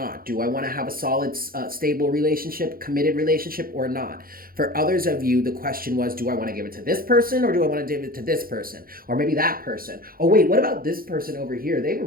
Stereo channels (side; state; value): left; late; 0.42 ms